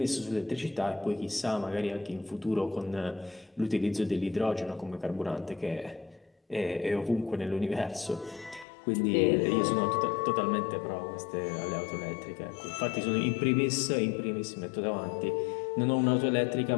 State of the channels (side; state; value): right; drops out; at 8.7 s